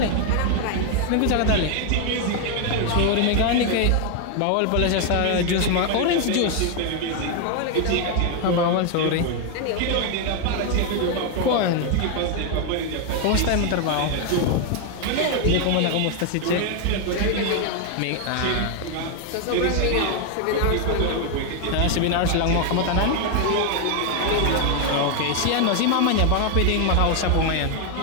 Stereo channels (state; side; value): different; both; correlation 0.01